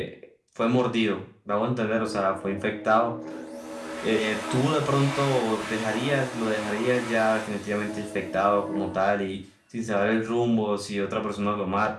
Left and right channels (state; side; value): identical; both; correlation 1.00